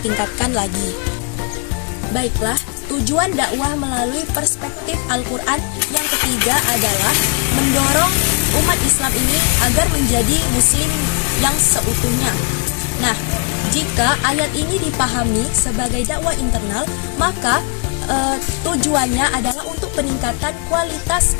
lagi. Baiklah, tujuan dakwah melalui perspektif Al-Quran yang ketiga adalah mendorong umat Islam ini agar menjadi muslim yang seutuhnya. Nah, jika ayat ini dipahami sebagai dakwah internal, maka tujuannya adalah untuk peningkatan kualitas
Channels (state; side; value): quieter; right; 35.0 dB